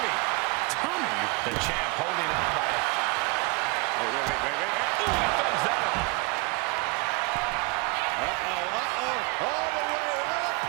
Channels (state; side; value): quieter; left; 28.2 dB